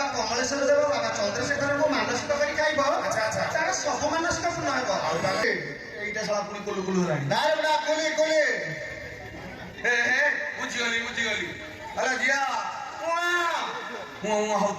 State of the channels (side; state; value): both; identical; correlation 1.00